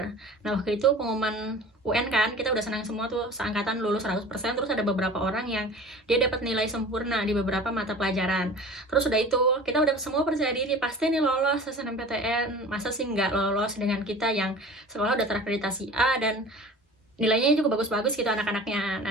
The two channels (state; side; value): normal; both; correlation 0.40